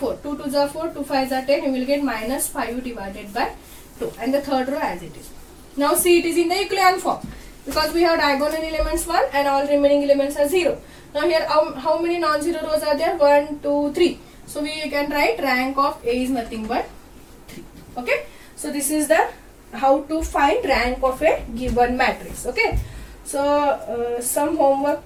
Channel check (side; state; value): both; identical; correlation 1.00